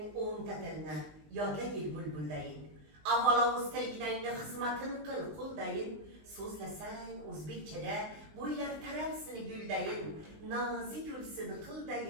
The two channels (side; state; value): left; late; 20 ms